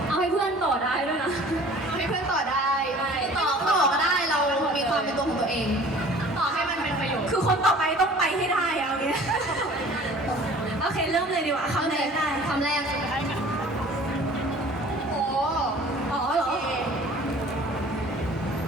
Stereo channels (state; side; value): normal; both; correlation 0.48